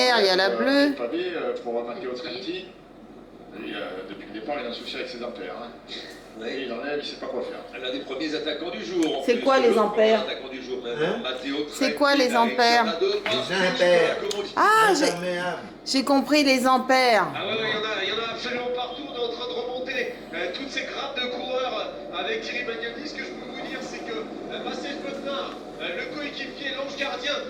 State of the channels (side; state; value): both; identical; correlation 1.00